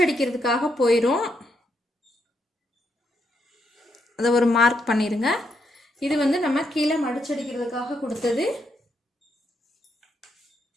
போயிடும். அதை ஒரு மார்க் பண்ணிடுங்க. இது வந்து நம்ம கீழே மடிச்சடிக்கிறதுக்காக கொடுத்தது.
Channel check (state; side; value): normal; both; correlation 0.78